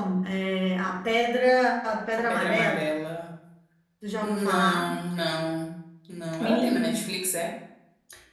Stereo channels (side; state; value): both; identical; correlation 1.00